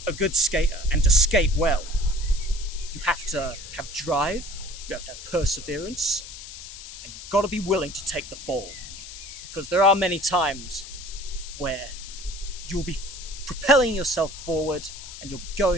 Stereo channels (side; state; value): left; noise; hiss, 12 dB below the sound